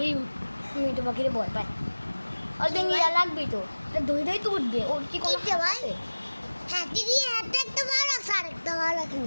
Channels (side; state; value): both; inverted; correlation -1.00